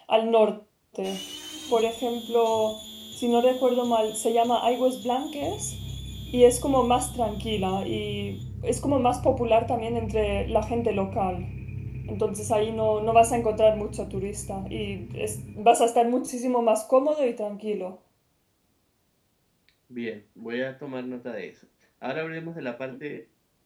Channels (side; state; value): both; identical; correlation 1.00